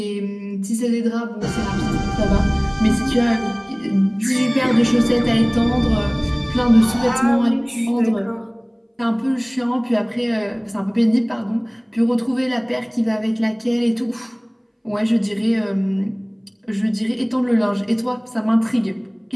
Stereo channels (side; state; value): both; identical; correlation 1.00